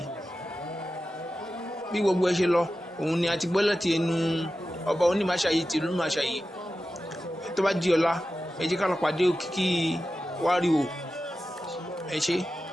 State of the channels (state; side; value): normal; both; correlation 0.93